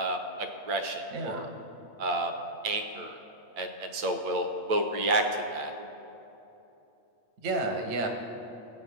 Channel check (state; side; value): late; left; 8.8 ms